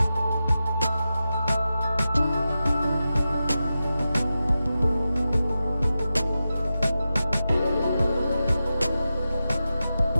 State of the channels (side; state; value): both; inverted; correlation -0.92